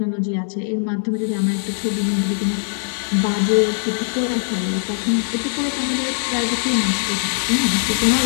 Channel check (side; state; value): right; silent; digital silence